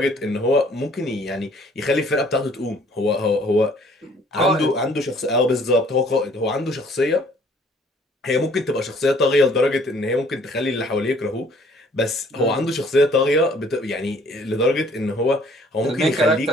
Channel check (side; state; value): both; normal; correlation 0.58